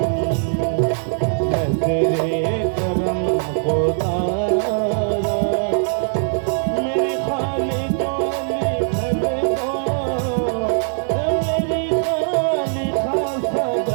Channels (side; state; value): left; silent; digital silence